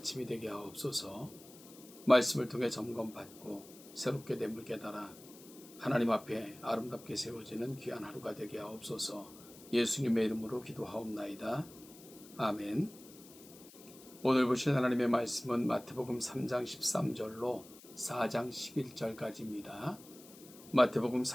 되게 하옵소서. 말씀을 통해 점검받고 새롭게 됨을 깨달아 하나님 앞에 아름답게 세워지는 귀한 하루가 되게 하옵소서. 예수님의 이름으로 기도하옵나이다. 아멘. 오늘 보실 하나님의 말씀은 마태복음 3장 13절로 4장 11절까지입니다. 마태복음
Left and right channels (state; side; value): noise; left; hiss, 20 dB below the sound